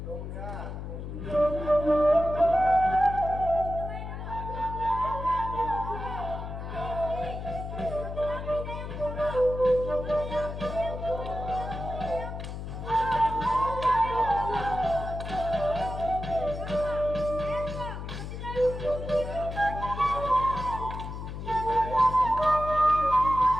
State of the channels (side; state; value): left; noise; hum, 7 dB below the sound